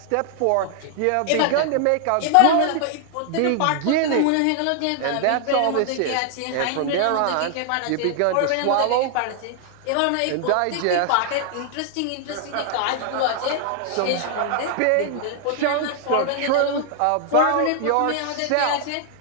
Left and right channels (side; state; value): both; different; correlation 0.00